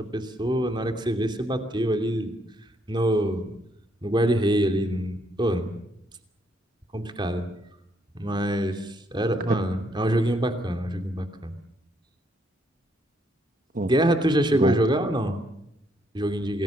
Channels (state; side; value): normal; both; correlation 0.72